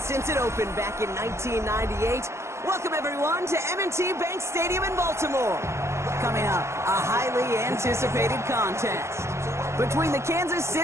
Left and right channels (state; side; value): late; left; 0.13 ms